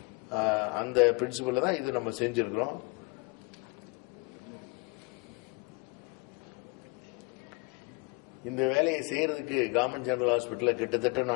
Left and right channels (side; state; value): right; quieter; 30.8 dB